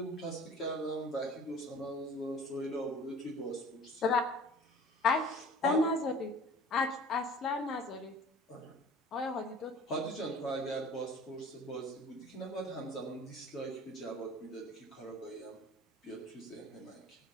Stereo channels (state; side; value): normal; both; correlation 0.45